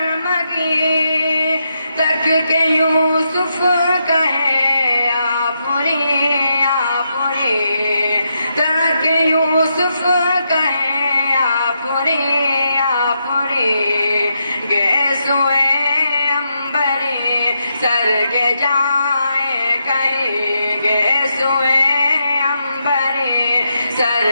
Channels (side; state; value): both; inverted; correlation -0.82